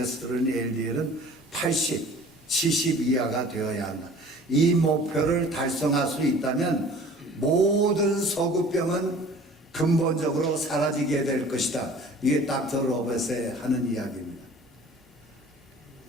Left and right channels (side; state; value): both; normal; correlation 0.47